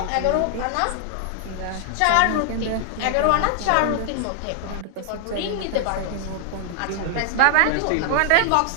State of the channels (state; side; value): different; both; correlation 0.00